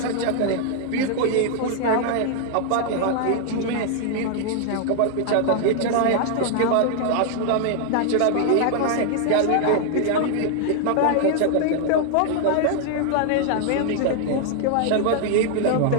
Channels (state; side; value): different; both; correlation 0.00